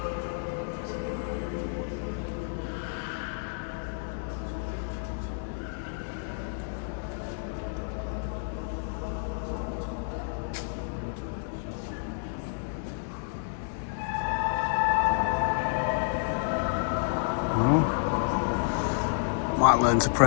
Might learn to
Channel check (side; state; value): right; silent; 58 dB below the other